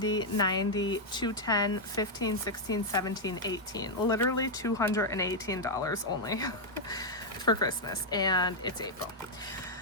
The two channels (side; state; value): both; normal; correlation -0.02